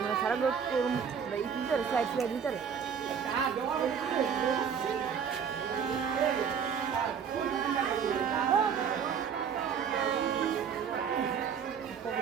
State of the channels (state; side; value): quieter; left; 7.2 dB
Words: না সারা লোক এই তিনটার স্লাইড দিতে রে